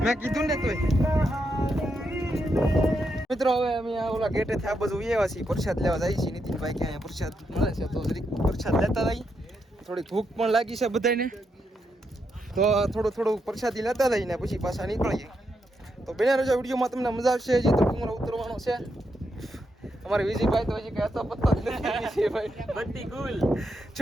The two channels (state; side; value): normal; both; correlation 0.82